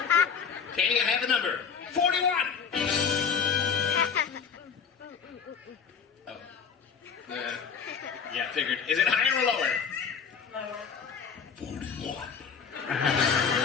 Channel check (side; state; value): right; quieter; 6.3 dB